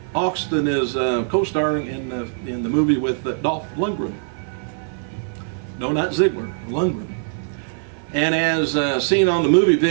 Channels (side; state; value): left; silent; 59 dB below the other